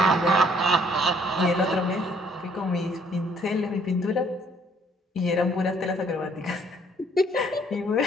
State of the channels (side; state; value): both; normal; correlation 0.63